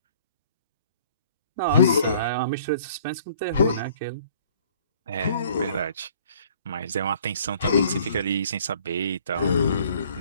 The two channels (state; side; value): inverted; both; correlation -0.56